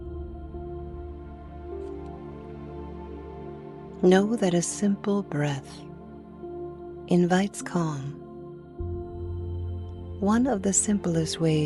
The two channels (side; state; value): both; identical; correlation 1.00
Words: Know that a simple breath invites calm. One of the simplest